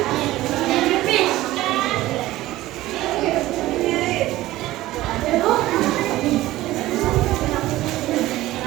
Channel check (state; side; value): quieter; left; 16.5 dB